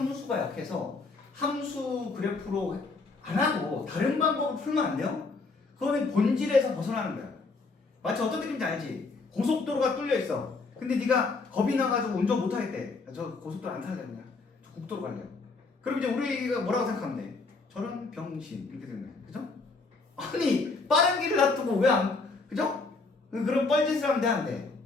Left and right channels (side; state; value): right; quieter; 4.0 dB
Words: 약해서 함수 그래프로 안 하고 다른 방법으로 풀면 안 돼요? 그거는 본질에서 벗어나는 거야. 마치 어떤 느낌인지 알지? 고속도로가 뚫려 있어. 근데 네가 겁이 나가지고 운전 못 하겠대. 저 고속도로 안 타야 되냐? 저 국도로 갈래요. 그럼 이제 우리가 뭐라고 생각하면 돼? 저런 병신 이렇게 되는 거야. 그죠? 아니 빠른 길을 놔두고 왜 안? 그죠? 그런 뻘짓을 하면 돼 안 돼?